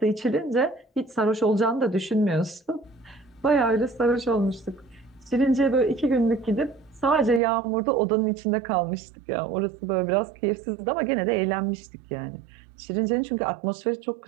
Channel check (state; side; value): drops out; left; at 7.4 s